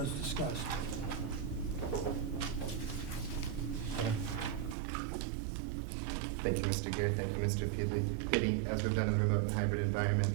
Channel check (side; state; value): left; drops out; at 4.8 s